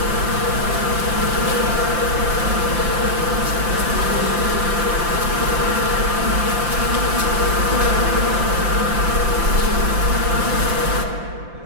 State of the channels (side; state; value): left; late; 5.8 ms